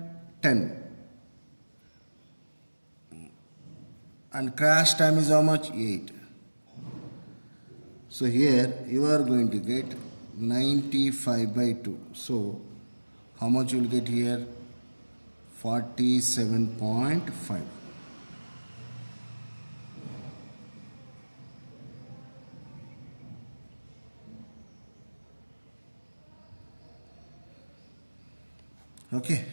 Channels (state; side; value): inverted; both; correlation -1.00